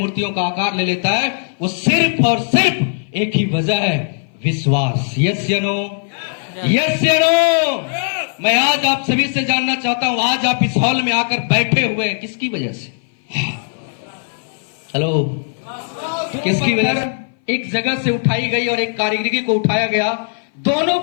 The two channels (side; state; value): right; silent; 59 dB below the other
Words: का आकार ले लेता है। वो सिर्फ और सिर्फ एक ही वजह है, विश्वास। यस या नो? यस या नो? मैं आज आप सभी से जानना चाहता हूं, आज आप इस हॉल में आकर बैठे हुए हैं किसकी वजह से? हेलो, किसकी वजह से? एक जगह से उठाई गई और एक कारीगरी को उठाया गया, दोनों